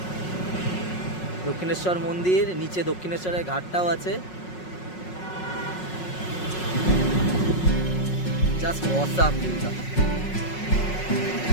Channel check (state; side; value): late; right; 5.5 ms